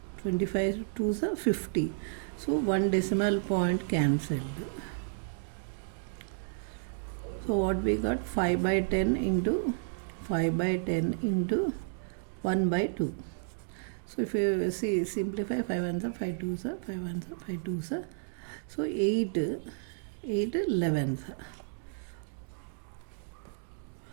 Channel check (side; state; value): left; silent; digital silence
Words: 25 2 is 50. So 1 decimal point cancelled. So what we got? 5 by 10 into 5 by 10 into 1 by 2. So if you see, simplify, 5 ones are 5 twos are 5 ones are 5 twos are. So 8 11s.